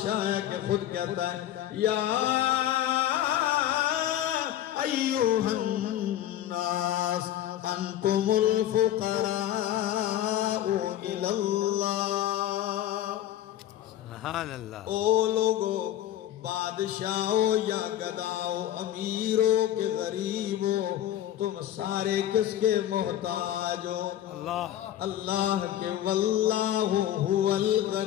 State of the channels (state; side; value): quieter; right; 12.3 dB